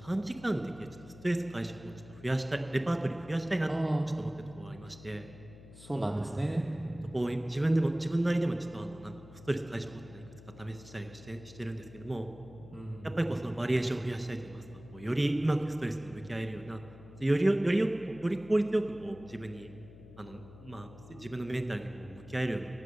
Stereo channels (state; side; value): noise; left; hum, 18 dB below the sound